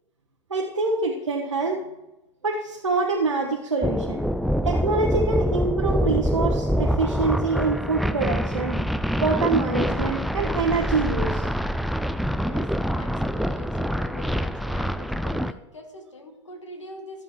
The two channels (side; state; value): both; normal; correlation 0.48